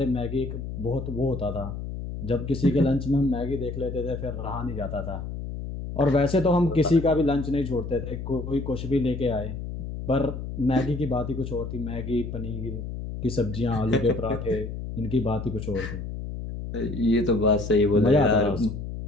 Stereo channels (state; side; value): noise; left; hum, 7 dB below the sound